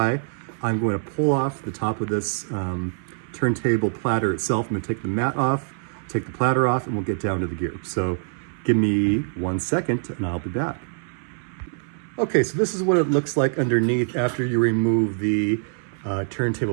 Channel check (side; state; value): left; silent; 59 dB below the other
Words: I'm going to pull off the top of this turntable platter itself. I'm going to take the mat off, take the platter off, and we'll get down to the gear. So give me 1 second and I'll be back. Okay, so this is what it looks like underneath after you remove the